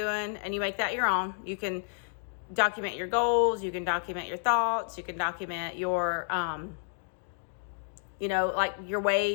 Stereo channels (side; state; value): right; silent; digital silence